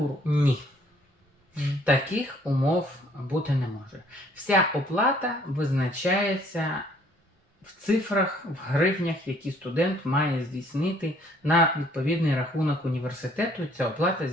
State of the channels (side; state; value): both; normal; correlation 0.61